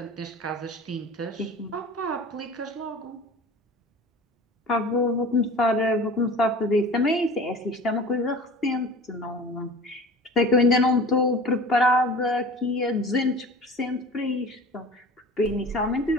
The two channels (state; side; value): normal; both; correlation 0.40